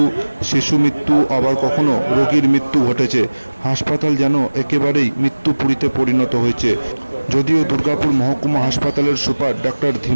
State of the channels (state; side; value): inverted; both; correlation -1.00